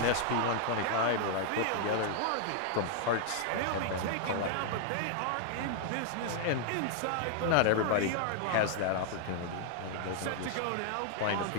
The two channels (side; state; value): both; different; correlation 0.00